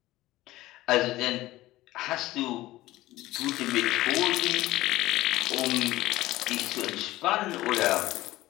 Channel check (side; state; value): right; quieter; 17.0 dB